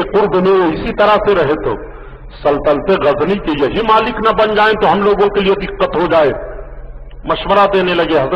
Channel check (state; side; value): identical; both; correlation 1.00